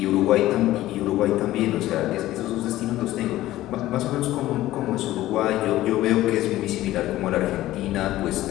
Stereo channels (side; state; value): right; quieter; 15.4 dB